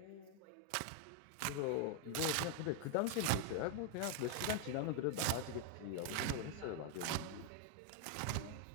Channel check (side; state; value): both; different; correlation 0.00